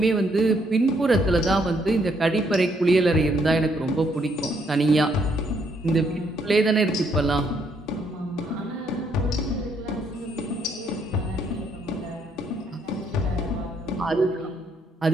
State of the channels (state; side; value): normal; both; correlation 0.71